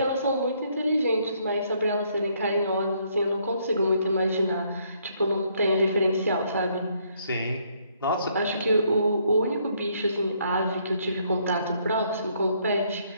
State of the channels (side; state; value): both; inverted; correlation -0.69